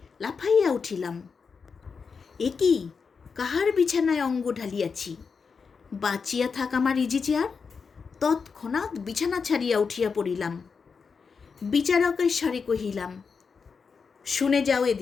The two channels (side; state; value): right; quieter; 5.4 dB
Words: লাফাইয়া উঠিলাম। এ কি, কাহার বিছানায় অঙ্গ ঢালিয়াছি? বাঁচিয়া থাক আমার ইজি চেয়ার। তৎক্ষণাৎ বিছানা ছাড়িয়া উঠিয়া পড়িলাম। বিচারকের স্বরে কহিলাম, শুনে যাও